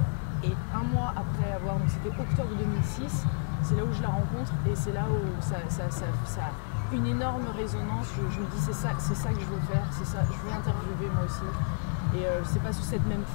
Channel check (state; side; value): silent; right; digital silence